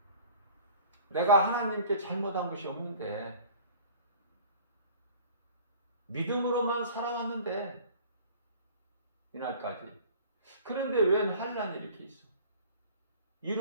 내가 하나님께 잘못한 것이 없는데 믿음으로만 살아왔는데 이날까지. 그런데 웬 환난이 이렇게 있어?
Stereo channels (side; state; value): both; inverted; correlation -0.47